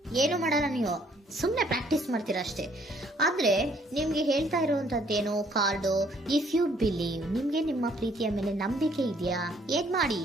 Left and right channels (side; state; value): both; normal; correlation 0.64